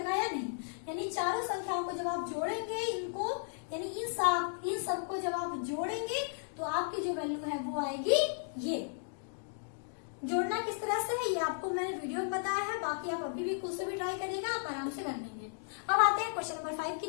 या नहीं। यानी चारों संख्याओं को जब आप जोड़ेंगे, इनको यानी इन सबको जब आप जोड़ेंगे तो आपकी जो वैल्यू है वो आएगी ये। जोड़ना किस तरह से है ये आपको मैंने वीडियो में बताया है, बाकी आप अभी भी खुद से भी ट्राई करिएगा, आप आराम से कर लेंगे। अब आते हैं क्वेश्चन नंबर 5 की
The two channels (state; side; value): silent; right; digital silence